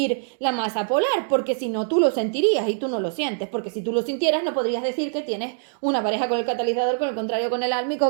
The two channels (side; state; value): left; silent; digital silence